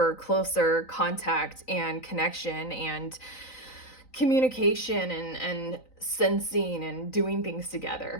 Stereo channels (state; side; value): late; right; 3.9 ms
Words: closer contact and connection and communication and sensing and doing things